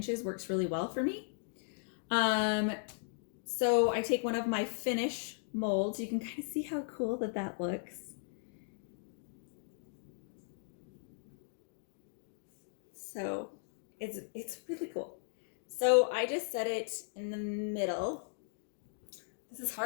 works really well for me. So I take one of my finish molds. You can kind of see how cool that looks. So it's really cool. So I just set it in the middle. This is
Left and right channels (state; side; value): silent; right; digital silence